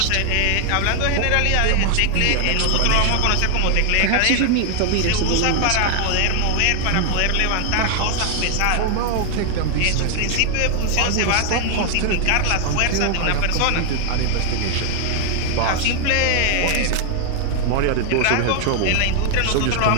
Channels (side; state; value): both; different; correlation 0.00